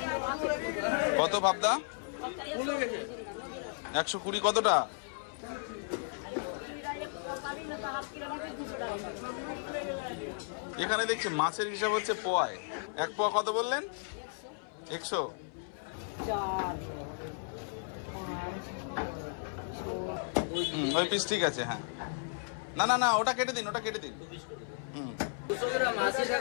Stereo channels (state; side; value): silent; right; 55 dB below the other